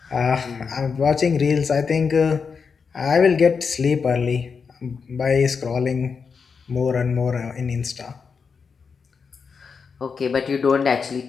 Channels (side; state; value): right; quieter; 5.6 dB